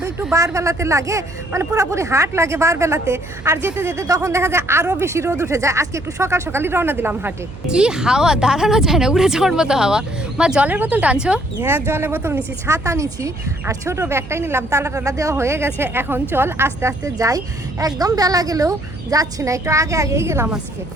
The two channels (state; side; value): noise; right; hum, 16 dB below the sound